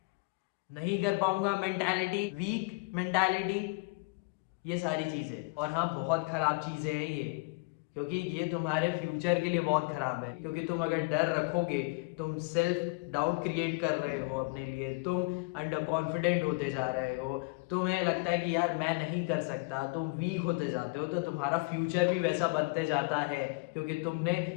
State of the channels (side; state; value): right; quieter; 28.0 dB